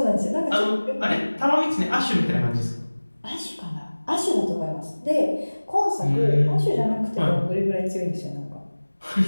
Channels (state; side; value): inverted; both; correlation -1.00